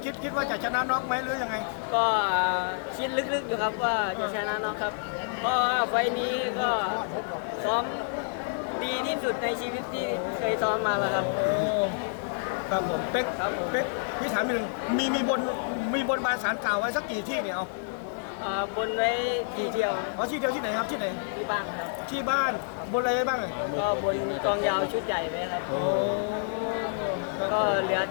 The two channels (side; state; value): right; silent; digital silence